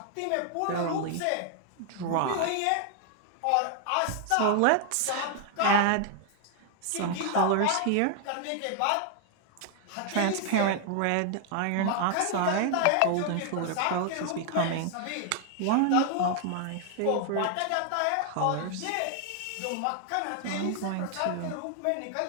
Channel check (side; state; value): both; different; correlation 0.00